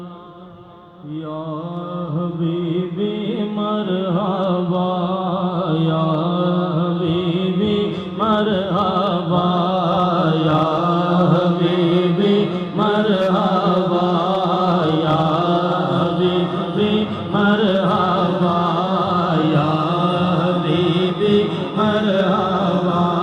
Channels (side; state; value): both; identical; correlation 1.00